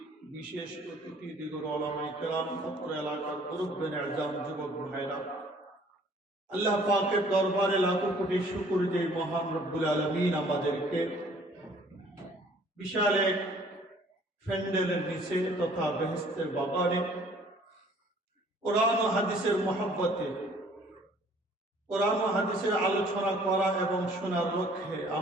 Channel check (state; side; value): normal; both; correlation 0.56